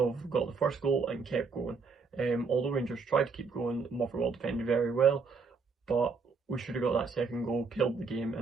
got the first goal and kept going. Although Rangers tried to keep going, Motherwell defended very well, but we should have got that second goal, killed the game,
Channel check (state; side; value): quieter; left; 4.8 dB